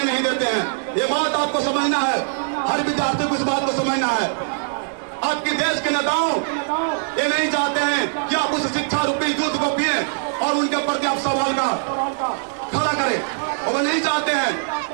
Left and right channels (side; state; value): left; silent; digital silence